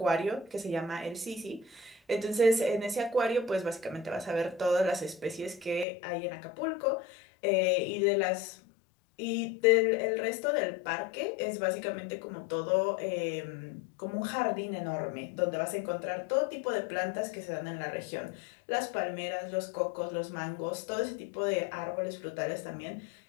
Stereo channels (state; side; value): drops out; right; at 5.9 s